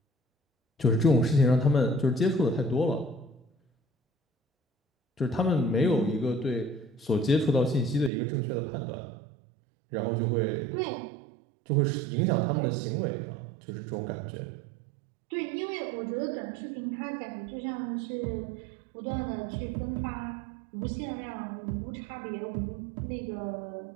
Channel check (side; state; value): left; drops out; at 8.1 s